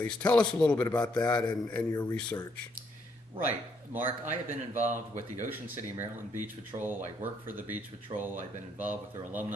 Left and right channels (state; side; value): normal; both; correlation 0.72